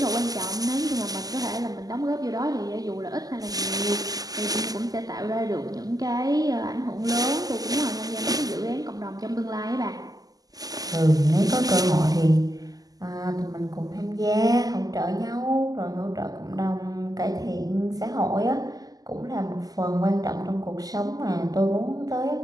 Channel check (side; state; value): left; late; 0.18 ms